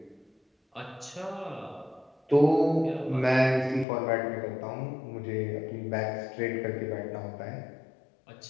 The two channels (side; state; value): right; drops out; at 3.9 s